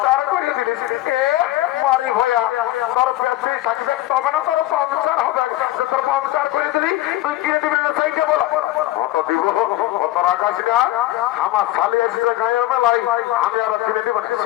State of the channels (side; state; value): right; quieter; 15.7 dB